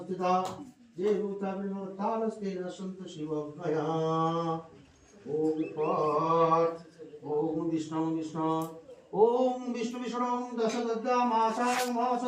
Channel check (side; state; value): both; identical; correlation 1.00